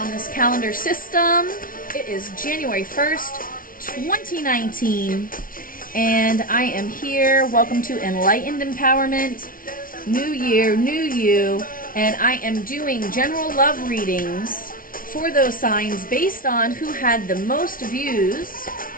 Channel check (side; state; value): right; late; 0.41 ms